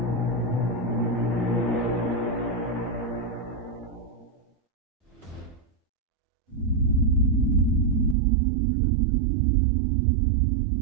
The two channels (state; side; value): drops out; left; at 8.2 s